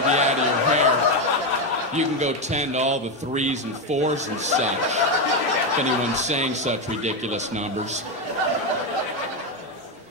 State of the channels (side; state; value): both; normal; correlation 0.09